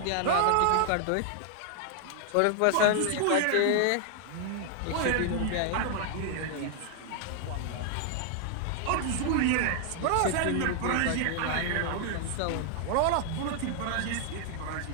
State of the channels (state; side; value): different; both; correlation 0.00